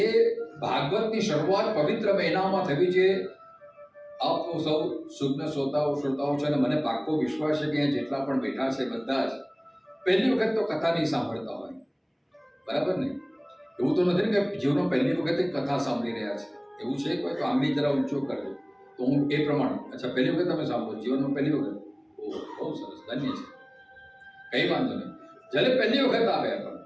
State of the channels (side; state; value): both; identical; correlation 1.00